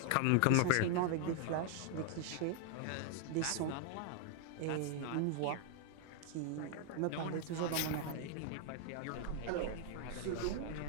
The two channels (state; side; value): different; both; correlation 0.00